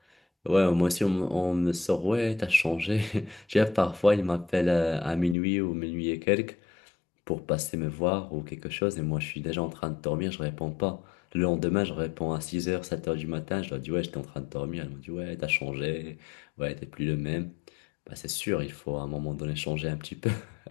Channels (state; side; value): drops out; right; at 5.4 s